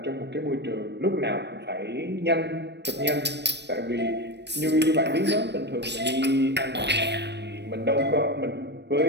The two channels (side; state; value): left; late; 0.50 ms